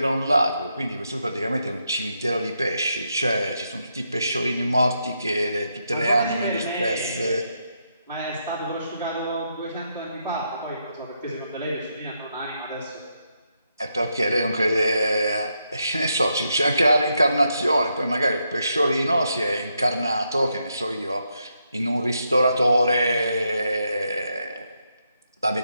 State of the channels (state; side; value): inverted; both; correlation -0.81